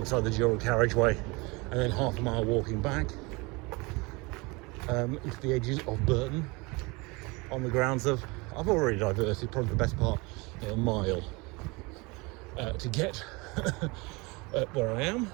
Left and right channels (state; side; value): quieter; left; 26.1 dB